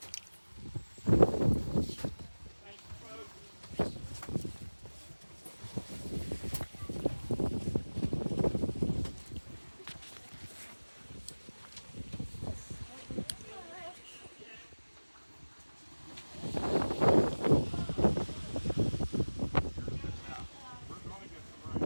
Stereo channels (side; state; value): both; inverted; correlation -1.00